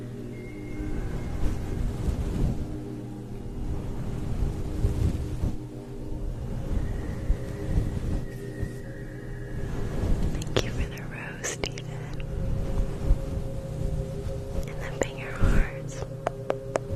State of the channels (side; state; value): both; identical; correlation 1.00